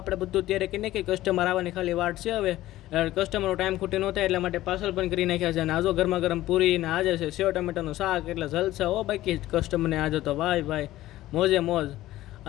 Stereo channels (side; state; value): right; quieter; 15.5 dB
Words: બધું ત્યારે કરી નાખીએ, કસ્ટમર આવવાની ખાલી વાટ છે હવે, કસ્ટમરનો ટાઈમ ખૂટી ન થાય એટલા માટે પાર્સલ પણ કરી નાખ્યા છે। અને આજો ગરમા ગરમ પૂરી ને આજે છે સેવ ટમેટાનું શાક, એટલે જલસા હો બાકી કસ્ટમરને આજે તો ભાઈ મોજે મોજ।